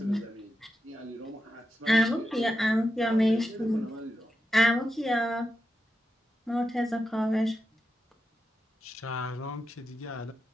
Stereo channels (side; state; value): both; normal; correlation 0.88